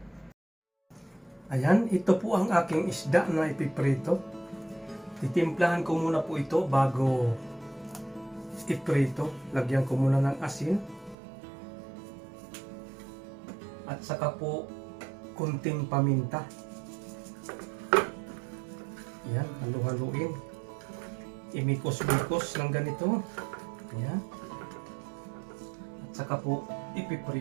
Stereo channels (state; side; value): drops out; left; at 11.2 s